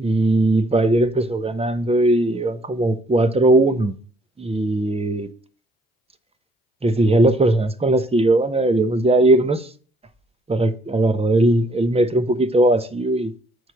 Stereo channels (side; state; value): both; normal; correlation 0.65